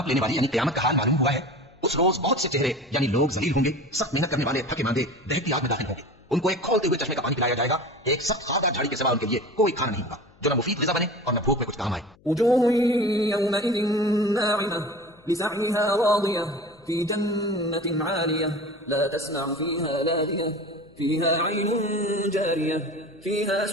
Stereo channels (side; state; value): left; noise; hum, 29 dB below the sound